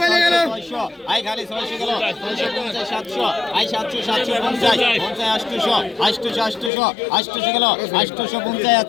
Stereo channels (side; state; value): right; drops out; at 6.7 s